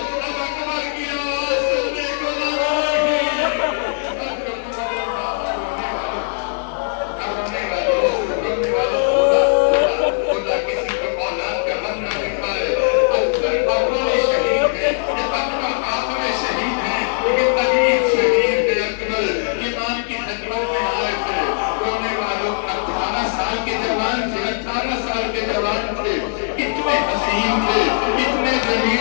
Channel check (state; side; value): silent; right; digital silence